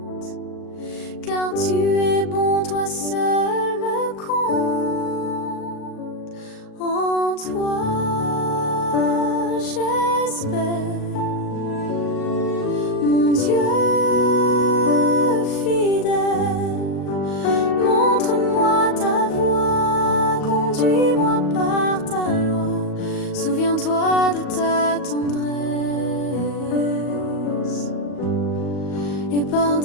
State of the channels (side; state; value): right; late; 38 ms